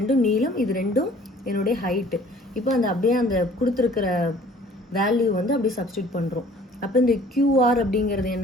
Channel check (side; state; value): both; normal; correlation 0.53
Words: நீளம், இது ரெண்டும் என்னுடைய ஹைட்டு. இப்போ அப்படியே அந்த கொடுத்துருக்கிற வேல்யூ வந்து அப்படியே சப்ஸ்டியூட் பண்ணுறோம். அப்போ இந்த QR அப்படிங்கிறது